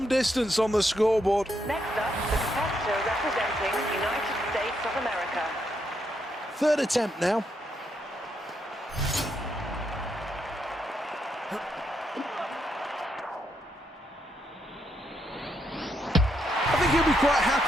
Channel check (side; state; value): both; normal; correlation 0.78